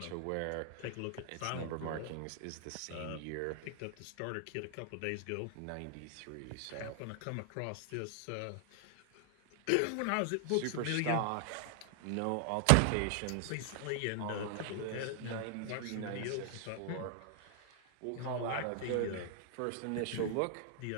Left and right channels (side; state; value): both; different; correlation 0.00